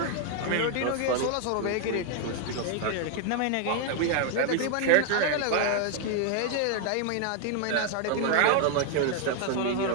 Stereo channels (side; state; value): both; different; correlation 0.00